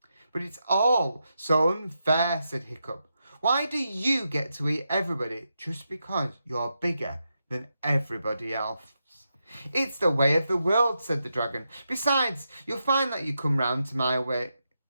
But it's all so unfair, said Hiccup. Why do you get to eat everybody just because you're bigger than everybody else? It's the way of the world, said the dragon. Besides, you'll find that you come round to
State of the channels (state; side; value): inverted; both; correlation -0.86